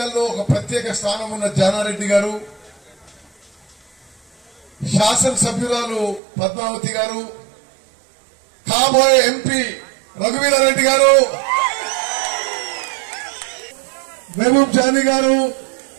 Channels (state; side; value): drops out; left; at 6.2 s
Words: ఒక ప్రత్యేక స్థానం ఉన్న జానారెడ్డి గారు, శాసనసభ్యురాలు పద్మావతి గారు, కాబోయే ఎంపీ రఘువీరెడ్డి గారు, మహబూబ్ జానీ గారు,